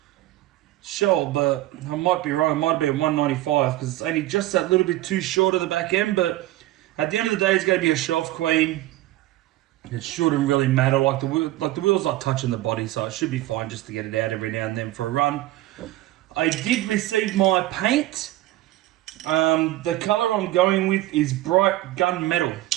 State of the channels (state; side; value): quieter; left; 16.0 dB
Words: shell, but I might be wrong. It might be a 195 because it's only just that little bit too short of the back end. But at the end of the day, it's going to be a shelf queen. It shouldn't really matter. Like the wheel's not touching the body, so it should be fine just to get it out every now and then for a run. I did receive my paint. The colour I'm going with is bright gunmetal.